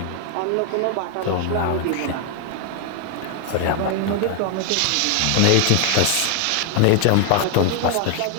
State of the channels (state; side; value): different; both; correlation 0.00